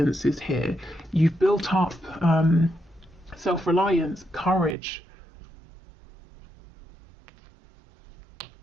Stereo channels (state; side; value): drops out; left; at 4.8 s